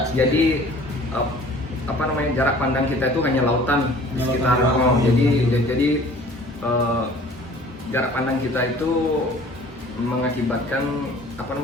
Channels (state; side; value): normal; both; correlation 0.49